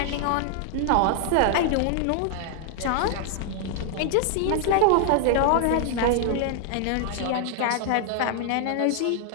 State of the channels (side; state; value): both; different; correlation 0.00